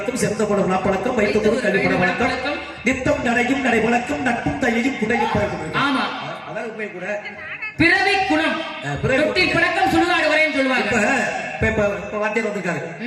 சிறந்த போட நாப்பழக்கம், வைத்தோடு கல்வி பட வழக்கம், நித்தம் நடையும் நடை வழக்கம், நட்பும் தையையும் குடையும் பழக்கம். ஆமா, அதான் உண்மை கூட. பிறவை குணம், தொட்டில் பழக்கம், சுடுகாடு வரைன்னு சொல்லுவாங்க. இப்ப வாத்தியார் வந்திருக்காங்க,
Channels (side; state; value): both; identical; correlation 1.00